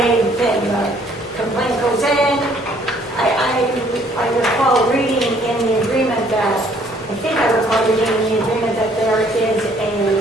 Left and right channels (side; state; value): right; noise; rumble, 28 dB below the sound